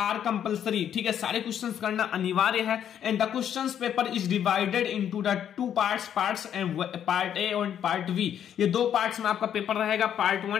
compulsory. ठीक है, सारे क्वेश्चंस करना अनिवार्य है। And the questions paper is divided into the 2 parts and part A और पार्ट वी। ये 2 पार्ट्स में आपका पेपर रहेगा, पार्ट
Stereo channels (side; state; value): right; quieter; 9.5 dB